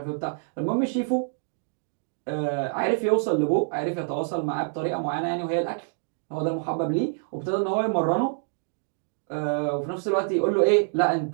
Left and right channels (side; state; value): left; silent; digital silence